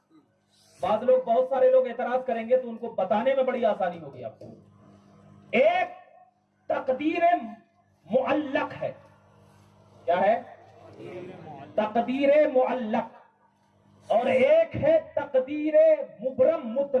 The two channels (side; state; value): both; identical; correlation 1.00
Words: بہت سارے لوگ اعتراض کریں گے تو ان کو بتانے میں بڑی آسانی ہوگی آپ کو. ایک تقدیر معلق ہے. کیا ہے؟ تقدیر معلق. اور ایک ہے تقدیر مبرم